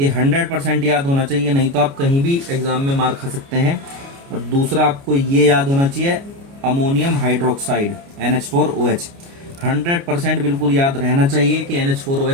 100% याद होना चाहिए, नहीं तो आप कहीं भी एग्जाम में मार खा सकते हैं। और दूसरा आपको ये याद होना चाहिए, अमोनियम हाइड्रोक्साइड NH4OH, 100% बिल्कुल याद रहना चाहिए कि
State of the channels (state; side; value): late; left; 29 ms